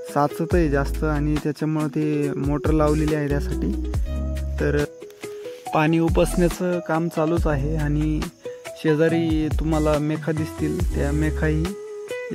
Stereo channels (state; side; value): identical; both; correlation 1.00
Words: साचत आहे जास्त आणि त्याच्यामुळे ते मोटर लावलेली आहे त्यासाठी. तर पाणी उपसण्याचं काम चालूच आहे आणि शेजारी तुम्हाला मेखा दिसतील. त्या मेखाही